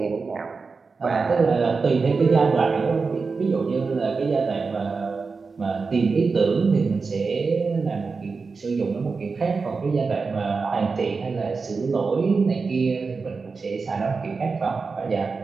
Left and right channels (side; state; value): left; quieter; 4.6 dB